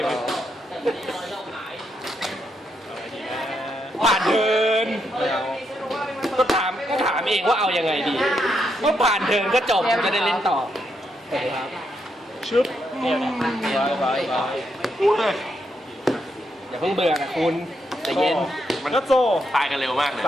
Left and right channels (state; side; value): normal; both; correlation 0.80